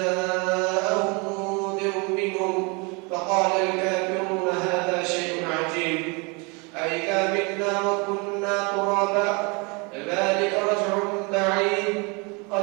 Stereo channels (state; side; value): quieter; left; 30.2 dB